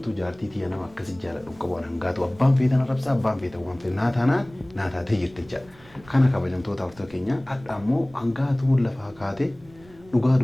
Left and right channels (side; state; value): right; noise; rumble, 25 dB below the sound